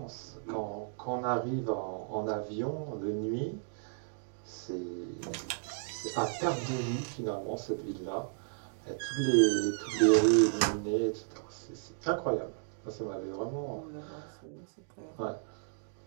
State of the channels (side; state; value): left; silent; digital silence